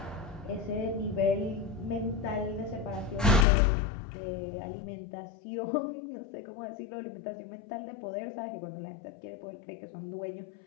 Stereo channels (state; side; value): drops out; right; at 3.5 s